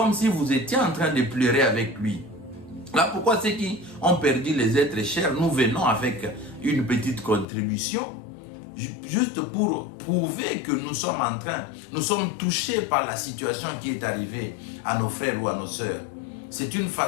si vous étiez en train de pleurer avec lui. Là, pourquoi ceux qui ont perdu les êtres chers, nous venons avec une petite contribution, juste pour prouver que nous sommes touchés par la situation qui est arrivée à nos frères ou à nos sœurs. C'est une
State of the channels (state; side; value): drops out; right; at 7.5 s